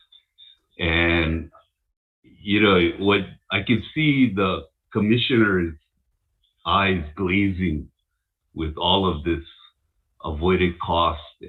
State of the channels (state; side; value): identical; both; correlation 1.00